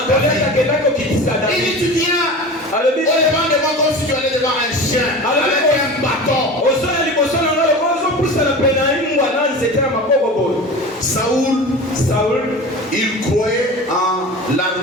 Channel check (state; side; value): normal; both; correlation 0.33